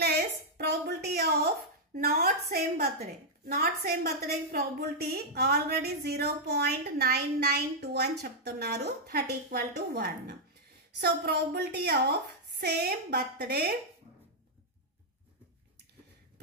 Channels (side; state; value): both; normal; correlation -0.05